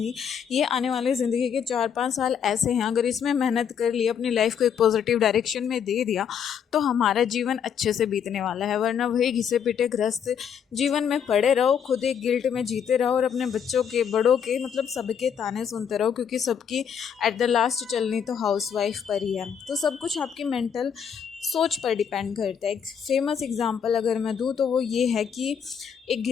ये आने वाले ज़िंदगी के 4-5 साल ऐसे हैं, अगर इसमें मेहनत कर ली, अपनी लाइफ को एक पॉजिटिव डायरेक्शन में दे दिया तो हमारा जीवन अच्छे से बीतने वाला है। वरना वही घिसे पिटे ग्रस्त जीवन में पड़े रहो, खुद एक गिल्ट में जीते रहो और अपने बच्चों के, बड़ों के, मतलब सबके ताने सुनते रहो, क्योंकि सबकी एट द लास्ट चलनी तो हाउसवाइफ पर ही है। तो सब कुछ आपकी मेंटल सोच पर डिपेंड करता है। एक फेमस एग्जांपल अगर मैं दूँ तो वो ये है कि एक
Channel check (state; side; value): quieter; right; 7.6 dB